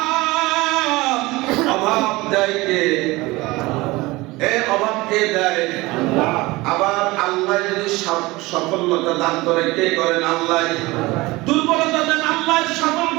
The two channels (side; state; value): left; quieter; 21.2 dB